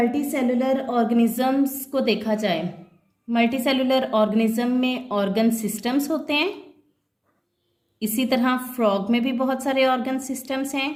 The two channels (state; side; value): identical; both; correlation 1.00